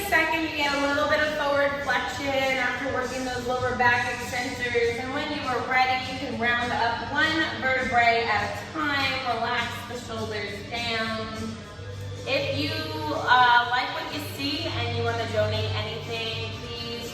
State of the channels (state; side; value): identical; both; correlation 1.00